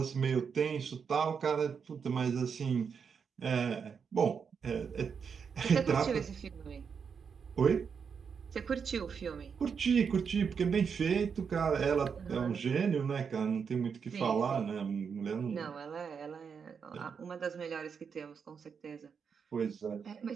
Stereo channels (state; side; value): quieter; left; 6.4 dB